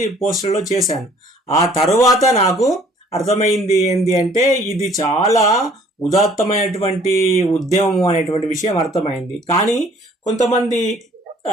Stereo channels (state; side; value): normal; both; correlation 0.56